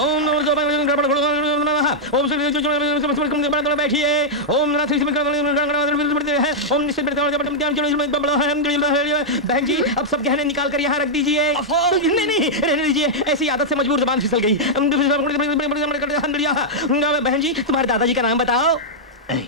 नमो बैठिए। ओम बहन जी, अब सब गहने निकाल कर यहाँ रख दीजिए। नहीं, रहने दीजिए, ऐसी आदत से मजबूर जबान फिसल गई। बहन जी, तुम्हारे दादाजी का नाम बताओ।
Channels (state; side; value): normal; both; correlation -0.06